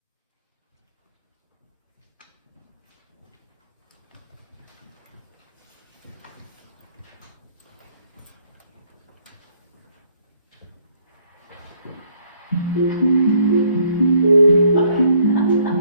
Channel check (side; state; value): both; inverted; correlation -0.65